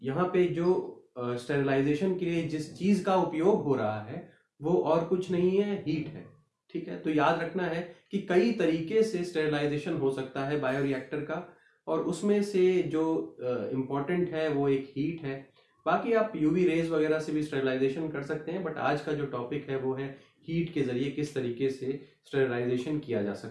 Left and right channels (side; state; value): both; identical; correlation 1.00